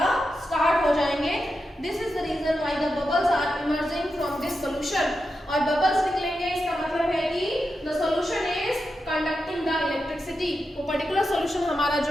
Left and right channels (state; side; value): normal; both; correlation 0.88